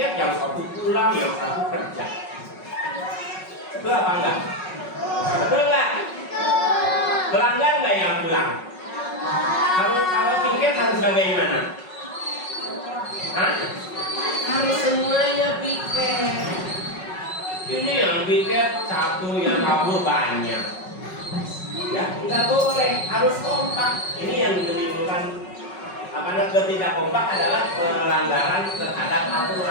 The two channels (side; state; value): right; late; 5.4 ms